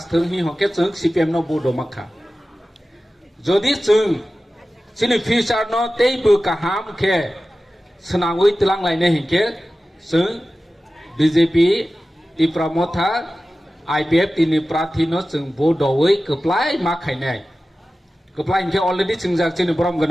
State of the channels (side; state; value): both; normal; correlation 0.95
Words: হি হকে जों CPM ন বুডো মাখা যদি जों চিনি ফিউচার ন তেই বু কাহাম খে সনাংই তলাং লাইনে হিকে जों BJP Tipra Motha IPF tini prathi no जों बुडोयै कप्लाय माखायनाय Keplai ke already chingjak chini borom